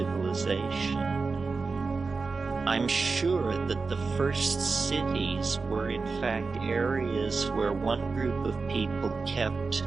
I'm sure that the first cities were in fact areas where one group of people kept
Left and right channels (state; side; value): quieter; left; 4.3 dB